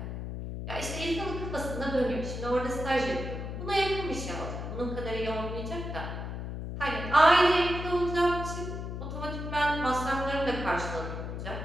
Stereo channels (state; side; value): noise; left; hum, 6 dB below the sound